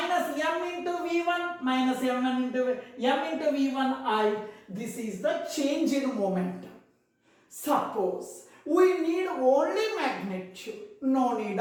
m into v1. Minus m into v1i. This is the change in momentum. Suppose we need only magnitude. No need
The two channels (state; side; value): identical; both; correlation 1.00